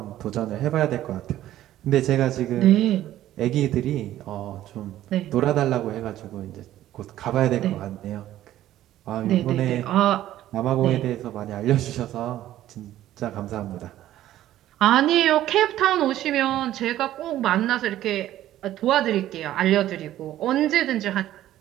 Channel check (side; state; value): left; quieter; 13.3 dB